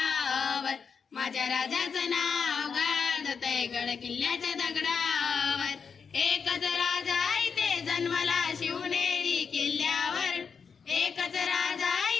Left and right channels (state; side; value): quieter; right; 6.0 dB